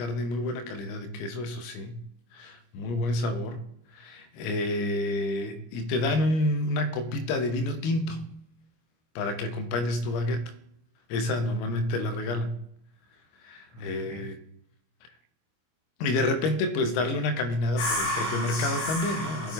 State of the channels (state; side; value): late; right; 25 ms